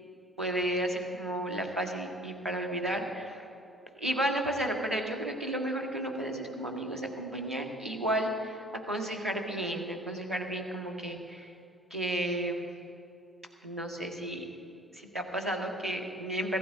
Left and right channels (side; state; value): both; normal; correlation 0.49